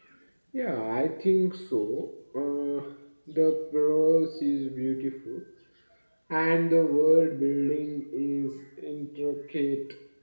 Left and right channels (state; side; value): inverted; both; correlation -1.00